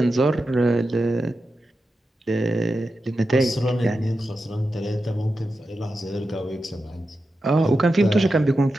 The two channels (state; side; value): normal; both; correlation 0.90